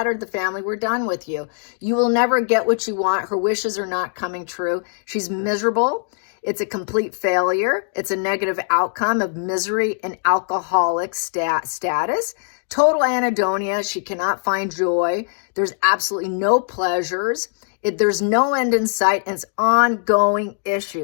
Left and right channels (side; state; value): right; silent; digital silence